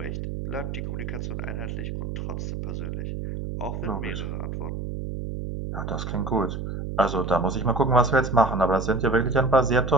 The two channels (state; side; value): noise; right; hum, 5 dB below the sound